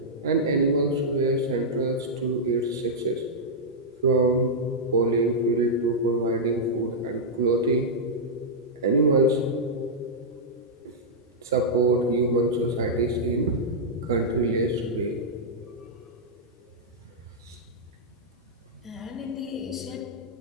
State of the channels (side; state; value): both; normal; correlation -0.08